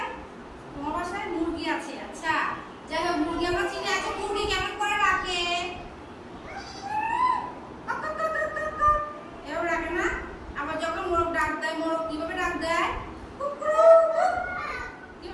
তোমার বাসায় মুরগি আছে। আচ্ছা যাই হোক, মুরগি আমরা চিনি। আছে মুরগি কেমন করে ডাকে? এভাবে ডাকে না? আবার যখন মোরগ ডাক দেয়, মোরগ কিভাবে ডাক দেয়?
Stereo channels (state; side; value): identical; both; correlation 1.00